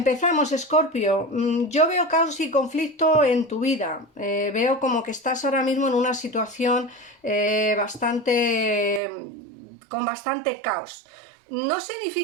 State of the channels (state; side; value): drops out; left; at 9.0 s